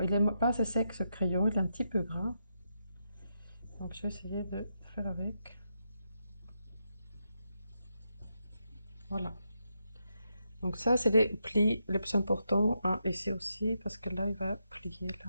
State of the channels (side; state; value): both; inverted; correlation -0.83